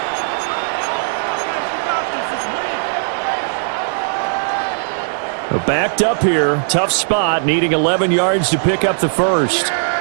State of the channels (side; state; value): left; silent; digital silence